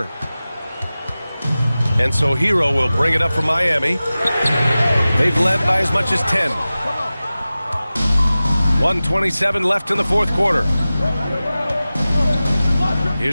And so Hero will bring it up for Miami. They've led by as much as 10. 1:27 left in the fourth quarter.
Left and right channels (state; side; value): inverted; both; correlation -0.96